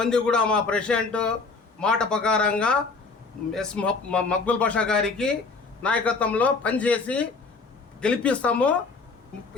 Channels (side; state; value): right; quieter; 4.2 dB